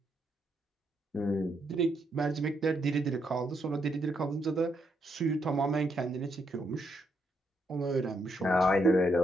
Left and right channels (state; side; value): normal; both; correlation 0.77